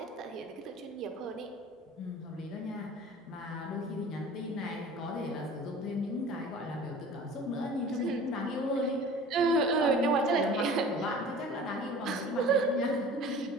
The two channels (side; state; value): both; normal; correlation 0.42